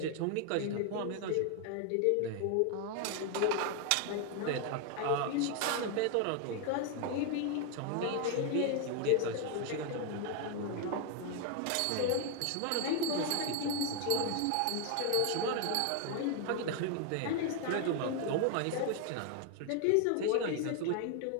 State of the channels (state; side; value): different; both; correlation 0.01